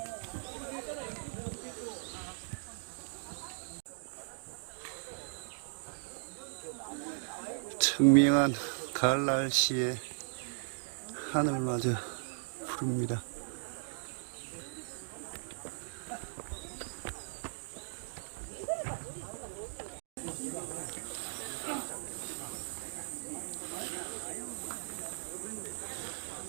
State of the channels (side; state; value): left; silent; digital silence